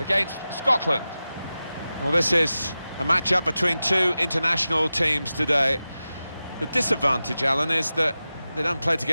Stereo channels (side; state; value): both; inverted; correlation -0.94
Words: Scotland. Well, this is a match-up between two international teams today. The disadvantage, Alan, is that they don't play